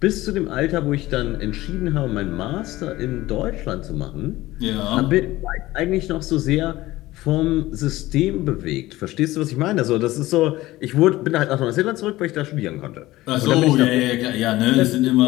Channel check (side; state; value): right; quieter; 17.5 dB